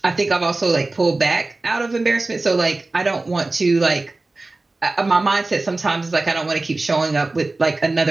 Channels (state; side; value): quieter; left; 3.2 dB